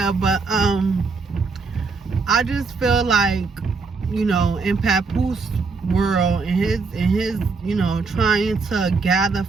but I just feel like, in Papoose world, in his trying to gather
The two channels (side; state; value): left; quieter; 4.4 dB